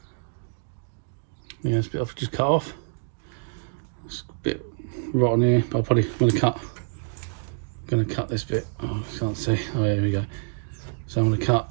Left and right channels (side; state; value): left; silent; digital silence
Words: yeah, this bit I've just cut off. It's a bit rotten here, but I'm probably going to cut this bit. Oh, I can't see. Oh yeah, here we go. So I'm going to cut